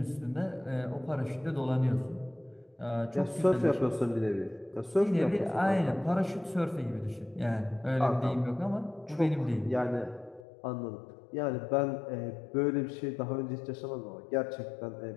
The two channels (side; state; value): right; drops out; at 10.5 s